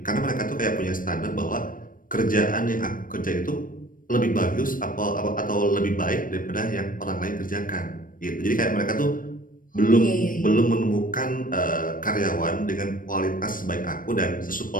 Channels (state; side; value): late; right; 0.40 ms